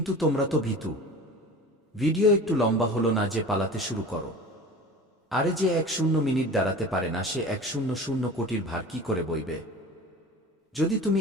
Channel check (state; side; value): normal; both; correlation 0.37